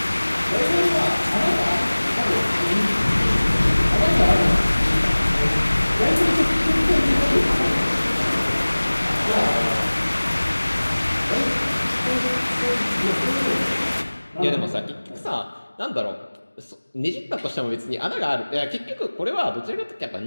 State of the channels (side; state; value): both; inverted; correlation -1.00